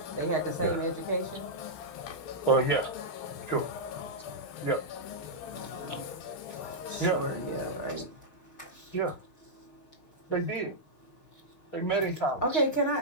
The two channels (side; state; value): right; late; 6.4 ms